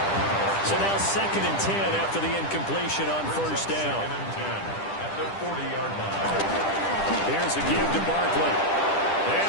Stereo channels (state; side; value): late; right; 10 ms